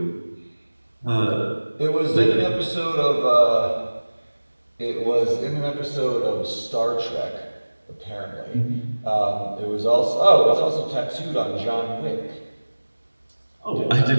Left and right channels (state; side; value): inverted; both; correlation -1.00